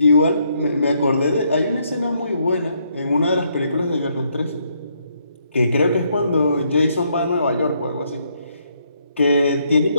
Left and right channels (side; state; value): both; inverted; correlation -0.73